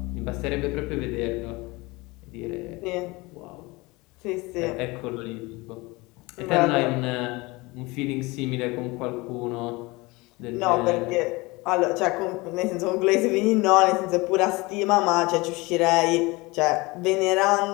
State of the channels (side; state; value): right; quieter; 23.6 dB